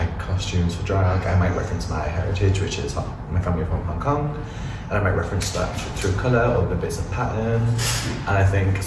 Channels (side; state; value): both; identical; correlation 1.00